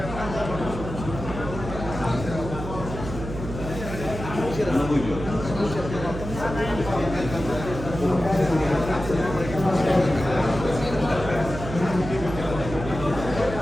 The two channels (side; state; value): right; noise; hum, 8 dB below the sound